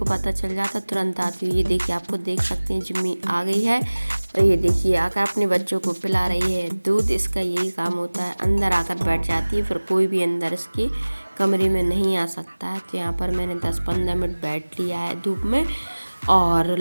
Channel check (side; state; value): both; inverted; correlation -1.00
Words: पता चल जाता, तुरंत आती है। ये देखिए, आपको देख सकते हैं जिम्मी आ गई है। और ये देखिए आकर अपने बच्चों को पिला रही है दूध। इसका यही काम होता है, अंदर आकर बैठ जाती है, फिर कोई भी अंदर इसके कमरे में नहीं आ सकता है। तो यहाँ पर मैंने 10-15 मिनट बैठ लिया है धूप में, और